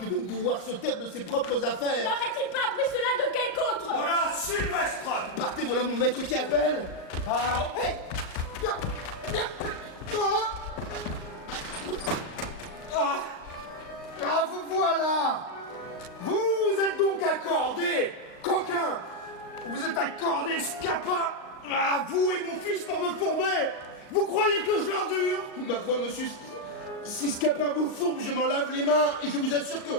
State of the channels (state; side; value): late; right; 38 ms